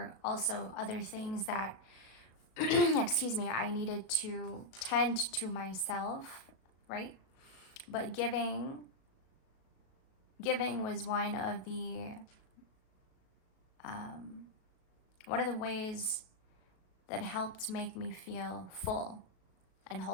also other things that excuse me, I needed to tend to myself, right? But giving was one of the ways that helped make me feel full and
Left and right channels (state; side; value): late; right; 37 ms